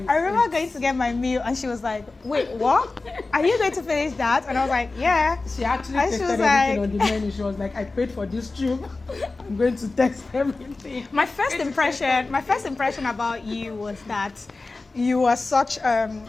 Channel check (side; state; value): right; quieter; 3.5 dB